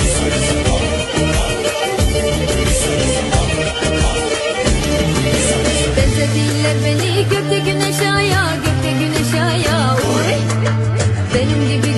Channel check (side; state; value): both; identical; correlation 1.00